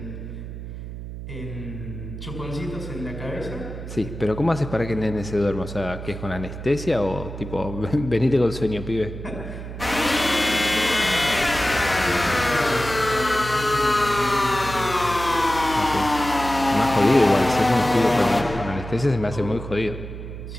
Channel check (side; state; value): right; noise; hum, 9 dB below the sound